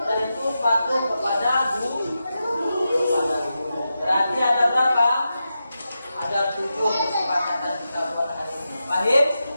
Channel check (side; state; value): both; inverted; correlation -0.89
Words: Dan itu patuh kepada guru. Berarti ada berapa? Ada 7 kesepakatan kita buat hari ini. Paham?